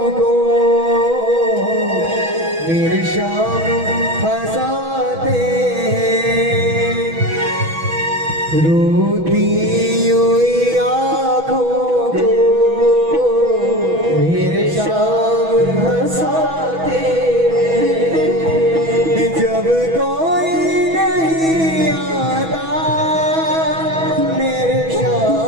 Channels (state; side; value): late; left; 6.1 ms